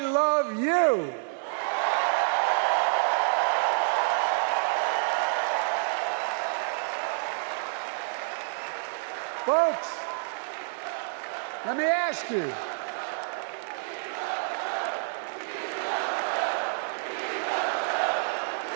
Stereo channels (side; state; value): left; silent; 59 dB below the other